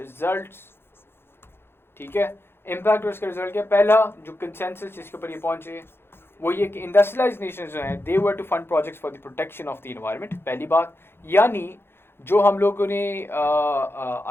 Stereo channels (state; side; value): late; right; 0.11 ms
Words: ठीक है। इम्पैक्ट और इसका रिजल्ट क्या, पहला जो कंसेंसस जिसके ऊपर ये पहुंचे वो ये कि इंडस्ट्रियलाइज्ड नेशंस जो हैं they were to fund projects for the protection of the environment, पहली बात। यानी जो हम लोगों ने